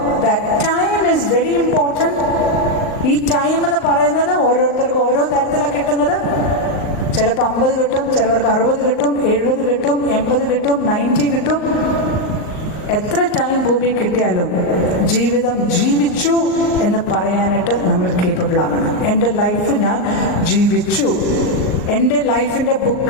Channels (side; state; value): right; late; 38 ms